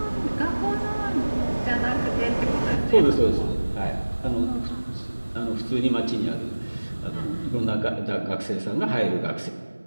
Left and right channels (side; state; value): both; inverted; correlation -1.00